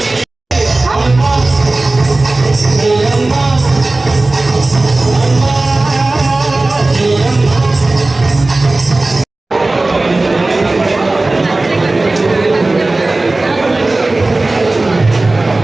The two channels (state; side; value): quieter; left; 3.0 dB